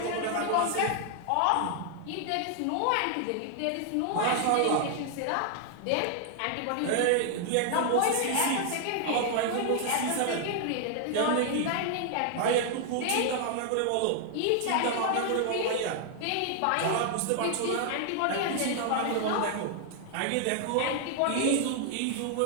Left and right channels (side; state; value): both; different; correlation 0.00